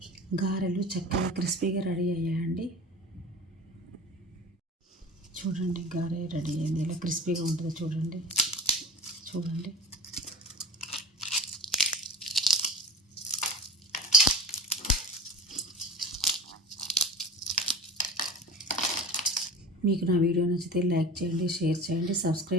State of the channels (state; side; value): normal; both; correlation 0.35